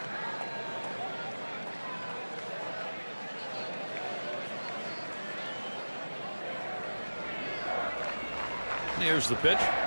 Here's the pitch.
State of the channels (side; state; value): both; inverted; correlation -1.00